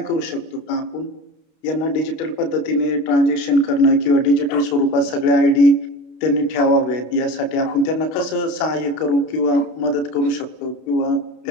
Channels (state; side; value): late; right; 32 ms